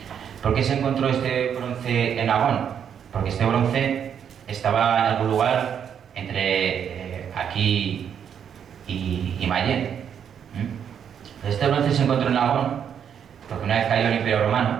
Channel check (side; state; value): left; quieter; 8.2 dB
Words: ¿Por qué se encontró este bronce en Agón? Porque este bronce estaba en algún lugar entre aquí y Mayén. Este bronce se encontró en Agón porque una vez cayó el Imperio